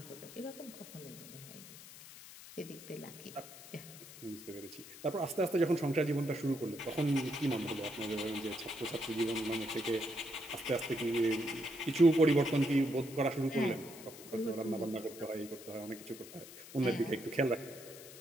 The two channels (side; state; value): left; noise; hiss, 16 dB below the sound